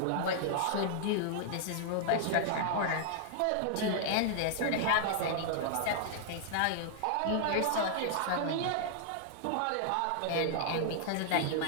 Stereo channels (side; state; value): both; different; correlation -0.01